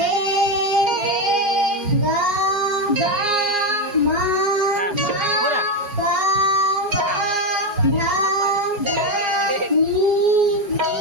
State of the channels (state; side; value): late; left; 4.9 ms